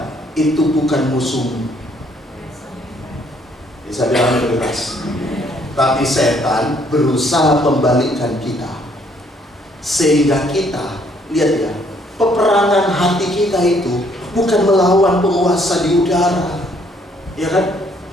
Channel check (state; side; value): normal; both; correlation 0.66